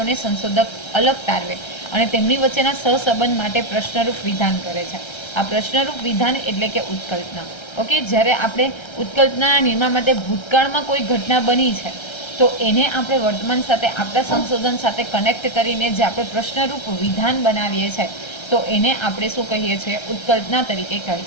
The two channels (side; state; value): right; late; 1.3 ms